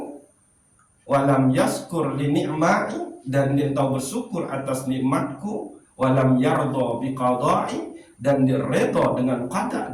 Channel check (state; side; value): identical; both; correlation 1.00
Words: walam yaskur li ni'mai, dan dia tahu bersyukur atas nikmatku, walam yardo biqadai, dan dia redha dengan